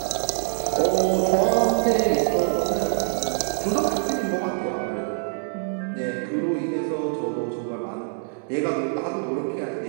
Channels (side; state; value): left; silent; 62 dB below the other